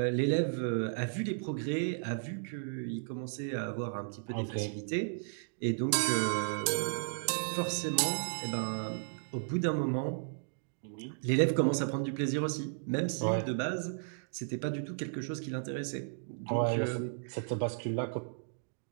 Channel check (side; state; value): left; silent; digital silence